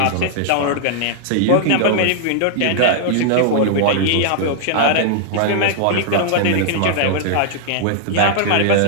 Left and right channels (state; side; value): different; both; correlation -0.01